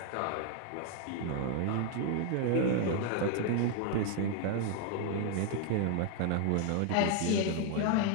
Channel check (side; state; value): both; different; correlation 0.00